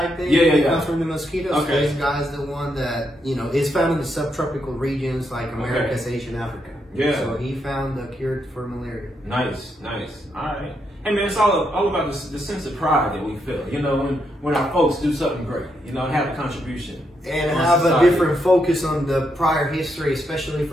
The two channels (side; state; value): both; normal; correlation 0.80